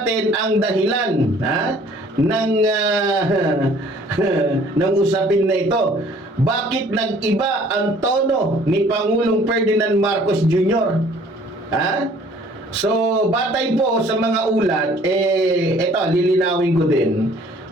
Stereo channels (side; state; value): both; normal; correlation 0.55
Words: ang dahilan ng usapin na ito. Bakit nag-iba ang tono ni Pangulong Ferdinand Marcos Jr.? So, batay po sa mga ulat, ito, lilinawin ko din.